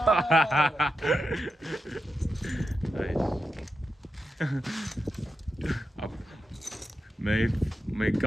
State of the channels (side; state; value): both; normal; correlation 0.88